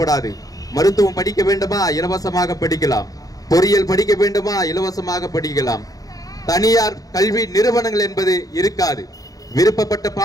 மருத்துவம் படிக்க வேண்டுமா, இலவசமாக படிக்கலாம். பொறியியல் படிக்க வேண்டுமா, இலவசமாக படிக்கலாம். தனியார் கல்வி நிறுவனங்கள் என்பது இருக்காது. விருப்பப்பட்ட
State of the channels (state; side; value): late; right; 0.17 ms